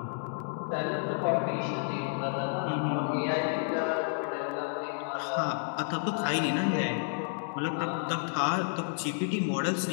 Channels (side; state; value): right; silent; digital silence